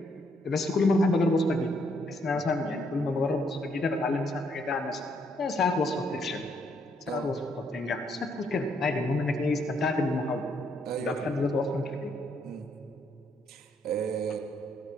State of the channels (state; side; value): normal; both; correlation 0.72